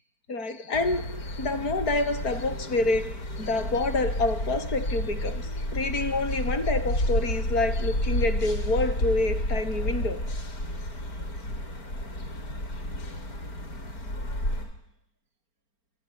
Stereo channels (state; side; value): late; right; 4.4 ms